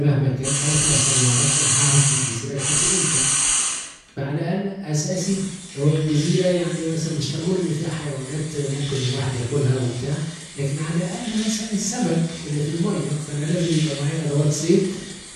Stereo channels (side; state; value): both; identical; correlation 1.00